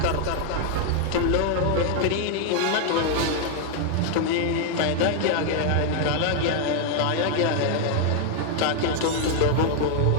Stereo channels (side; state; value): both; different; correlation 0.00